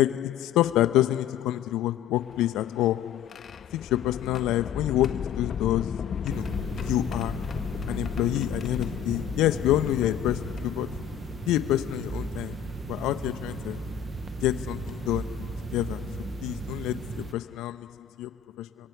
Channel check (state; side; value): quieter; right; 9.6 dB